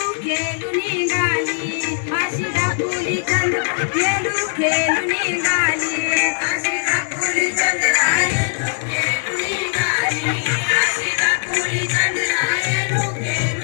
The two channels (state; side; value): silent; right; digital silence